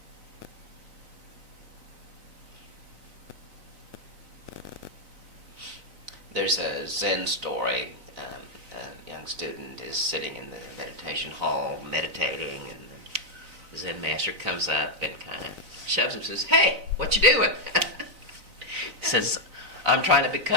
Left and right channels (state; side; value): late; left; 3.9 ms